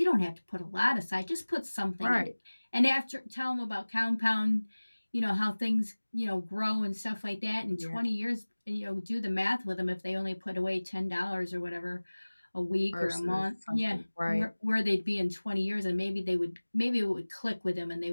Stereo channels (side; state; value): both; inverted; correlation -1.00